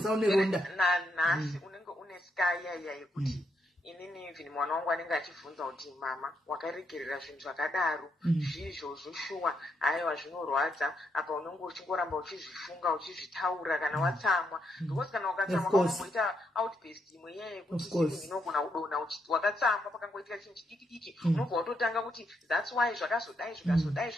une ronda nanhasi unenge une ska yaya yekuti inini even mwana wangu anenge achibvunza kuti mama wakaregerera zvinhu zvakadaro zvizvozvo shuwa haiwa zvinorwadza apa unenge uchingoramba uchizvifunga uchizvitaura kana watsamwa because kana ukatsamwa unomboita outburst imwe yeye kuti inogona kudonha wakatsamwa pakangoitika chinhu chidiki unobva watotanga kuti that's why zvakazodai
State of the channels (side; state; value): both; normal; correlation 0.79